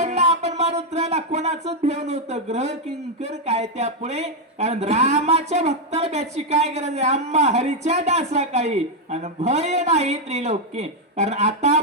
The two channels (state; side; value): normal; both; correlation 0.01